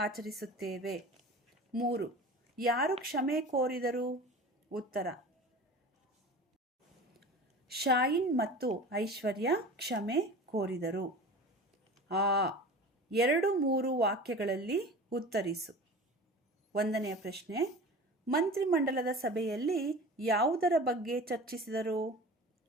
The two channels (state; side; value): normal; both; correlation 0.36